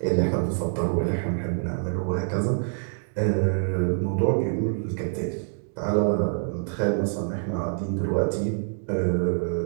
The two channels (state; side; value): silent; left; 59 dB below the other